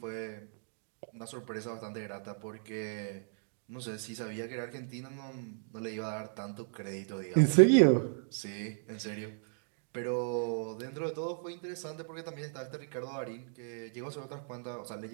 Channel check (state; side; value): silent; left; digital silence